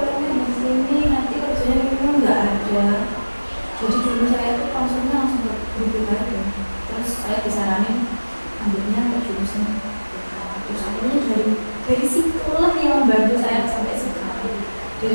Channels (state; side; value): inverted; both; correlation -1.00